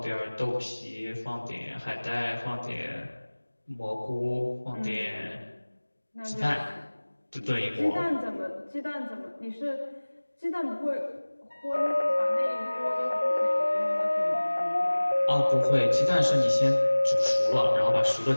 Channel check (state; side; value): inverted; both; correlation -1.00